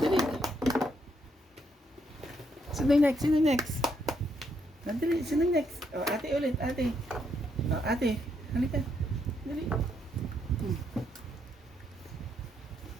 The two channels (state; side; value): normal; both; correlation 0.75